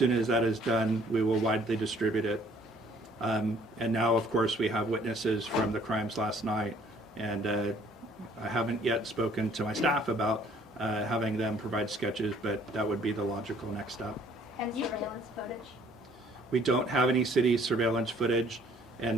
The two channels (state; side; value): normal; both; correlation 0.59